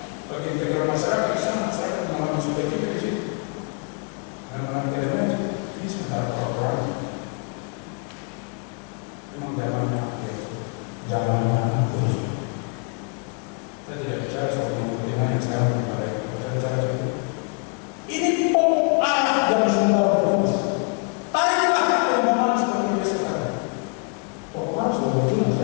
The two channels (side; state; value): right; quieter; 36.0 dB